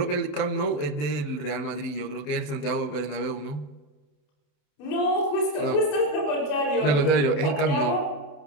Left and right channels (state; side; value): late; right; 27 ms